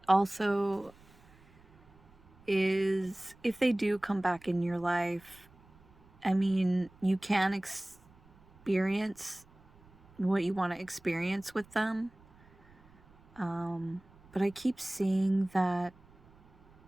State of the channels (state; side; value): noise; right; rumble, 27 dB below the sound